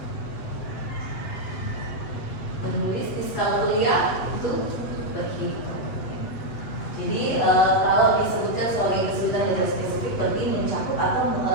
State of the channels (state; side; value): late; right; 8.0 ms